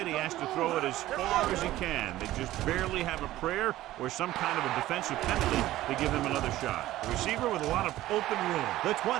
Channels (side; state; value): left; quieter; 15.3 dB